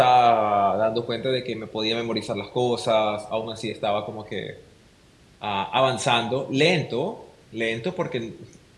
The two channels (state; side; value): identical; both; correlation 1.00